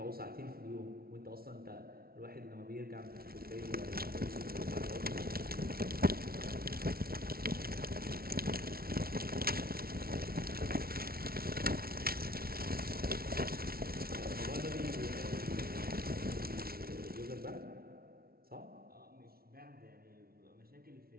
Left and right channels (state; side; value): late; left; 0.44 ms